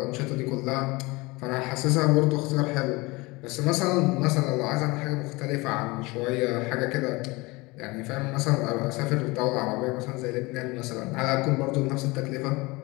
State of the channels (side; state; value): right; quieter; 23.7 dB